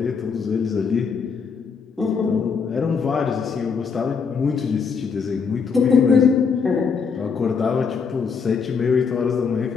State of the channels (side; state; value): right; quieter; 5.7 dB